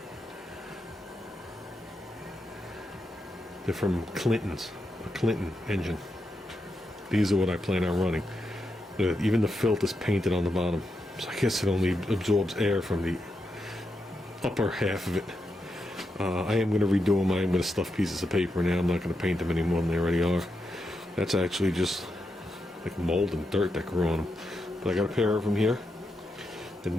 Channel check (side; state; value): both; normal; correlation 0.85